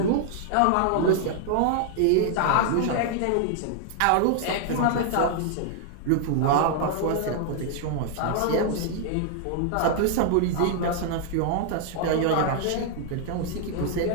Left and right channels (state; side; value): different; both; correlation 0.00